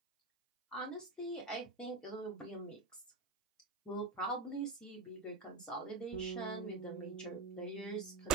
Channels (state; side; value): quieter; left; 3.7 dB